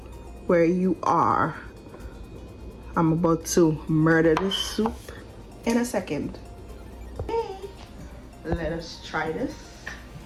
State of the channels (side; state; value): both; identical; correlation 1.00